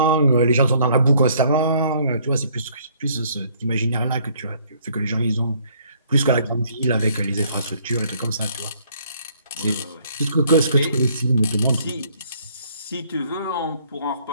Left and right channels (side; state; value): both; inverted; correlation -0.63